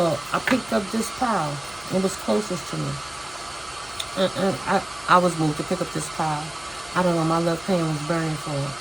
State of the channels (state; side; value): noise; left; hum, 25 dB below the sound